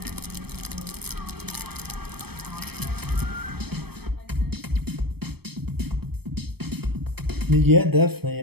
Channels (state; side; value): late; left; 0.97 ms